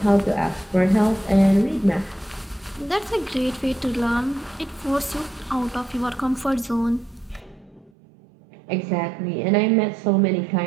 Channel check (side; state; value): left; drops out; at 7.9 s